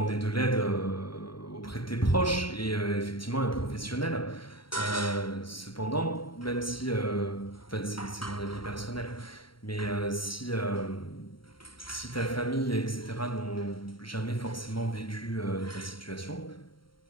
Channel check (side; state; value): right; late; 0.73 ms